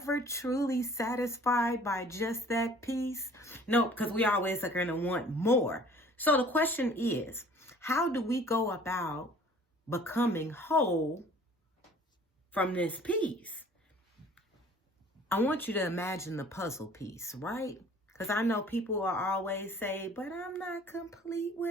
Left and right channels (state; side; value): normal; both; correlation 0.51